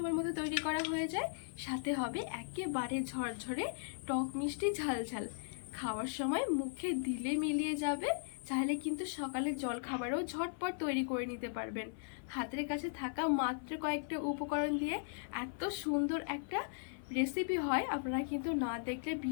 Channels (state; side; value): silent; right; 53 dB below the other